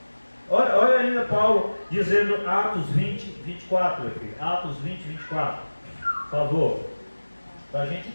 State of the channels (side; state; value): both; inverted; correlation -1.00